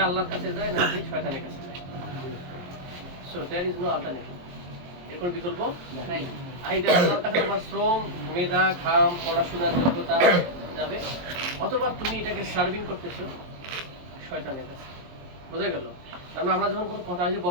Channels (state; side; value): late; left; 23 ms